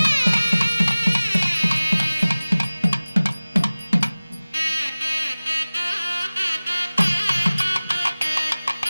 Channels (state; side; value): inverted; both; correlation -0.99